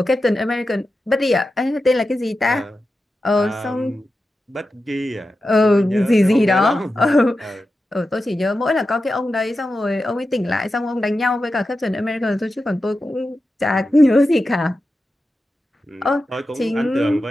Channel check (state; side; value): normal; both; correlation 0.91